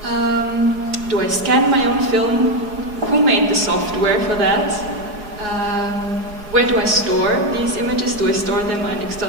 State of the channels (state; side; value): late; left; 4.8 ms